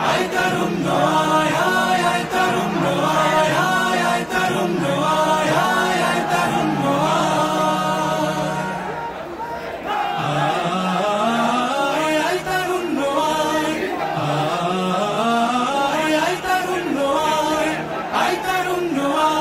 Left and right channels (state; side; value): identical; both; correlation 1.00